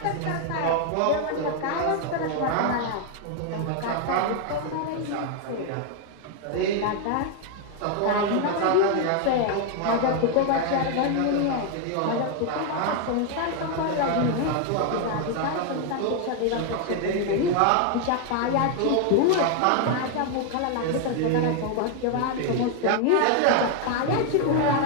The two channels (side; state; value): both; different; correlation 0.00